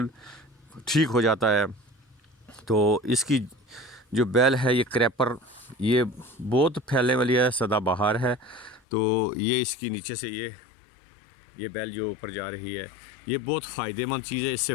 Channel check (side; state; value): right; drops out; at 8.8 s